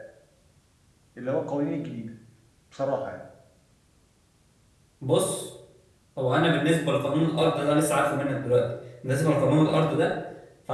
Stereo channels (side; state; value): both; identical; correlation 1.00